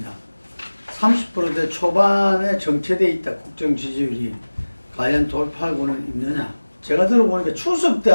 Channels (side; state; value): both; inverted; correlation -1.00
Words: 30%대 초반에 정체되어 있다 국정 지지율이 과연 돌파하고는 있느냐. 제가 들어보니까 추석 때